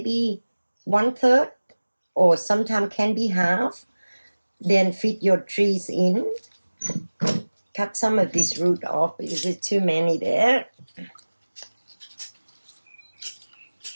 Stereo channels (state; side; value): inverted; both; correlation -1.00